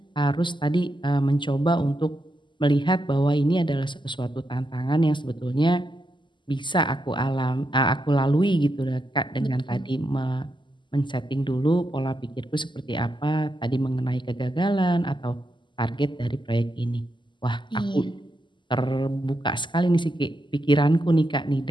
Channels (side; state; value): right; late; 0.23 ms